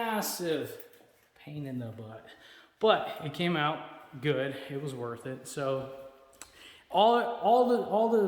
pain in the butt, but it came out good. It was worth it. So all the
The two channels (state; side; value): identical; both; correlation 1.00